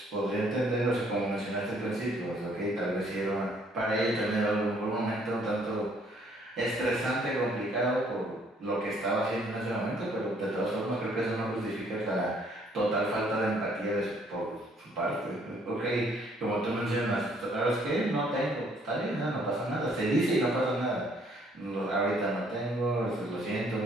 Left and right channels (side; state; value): both; normal; correlation 0.64